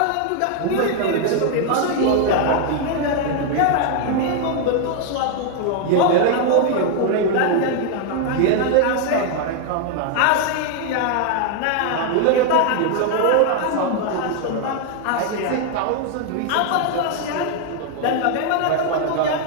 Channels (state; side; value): different; both; correlation 0.00